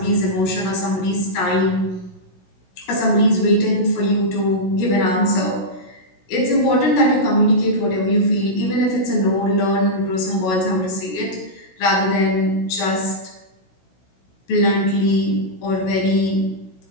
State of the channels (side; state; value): right; late; 16 ms